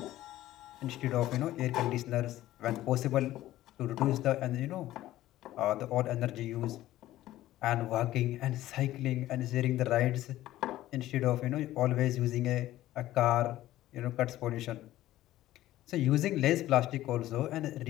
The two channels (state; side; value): quieter; right; 14.8 dB